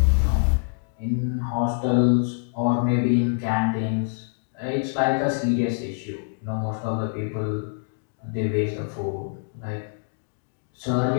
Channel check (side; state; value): right; silent; digital silence